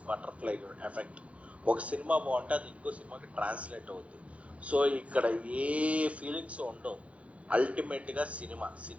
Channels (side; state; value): left; late; 0.064 ms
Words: బటర్ఫ్లై ఎఫెక్ట్. ఒక సినిమా బాగుంటే అది ఇంకో సినిమాకి ట్రాన్స్లేట్ అవుతుంది. సో ఇక్కడ ఏ ఫీలింగ్స్ ఉండవు. అల్టిమేట్గా